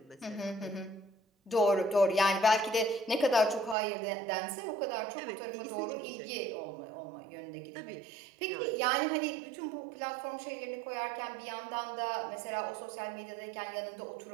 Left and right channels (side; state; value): left; drops out; at 3.8 s